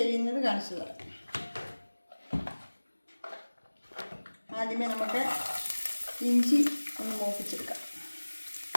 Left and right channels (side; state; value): both; inverted; correlation -1.00